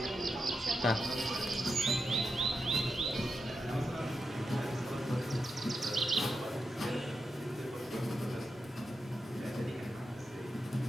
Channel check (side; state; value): both; normal; correlation 0.87